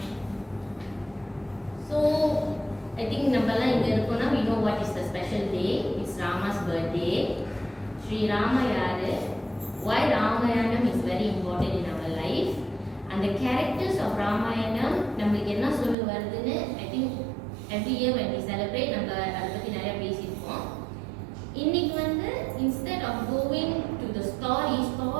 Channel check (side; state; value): left; drops out; at 16.0 s